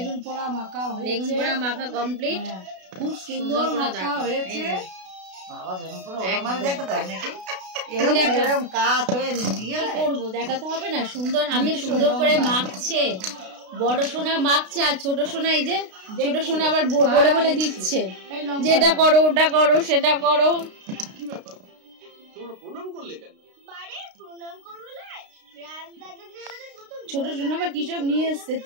পোড়া মাখা হয়েছে, বেগুন পোড়া মাখা কমপ্লিট, খুব সুন্দর মাখা হয়েছে। বাবা বেগুন পোড়া আমার দেখাতে হয় নাকি? এরকম কাট হয়ে নিয়ে করবো, দেখাতে হবে না? সুন্দর হাতে সুন্দর করে মাখছে, বড় সোনা মাখছে, আর ছোট সোনা এই যে ছোট সোনা আবার বলে বলে দিচ্ছে যেটা করো ওটা করো সেটা করো। ছোট সোনা আবার কিসব নিয়ে এসছে,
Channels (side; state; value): left; late; 32 ms